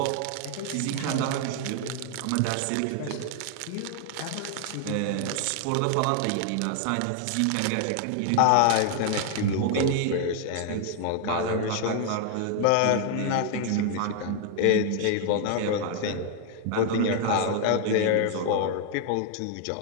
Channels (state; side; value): different; both; correlation 0.00